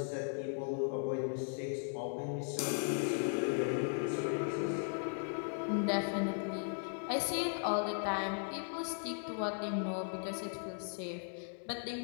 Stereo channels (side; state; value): right; silent; 53 dB below the other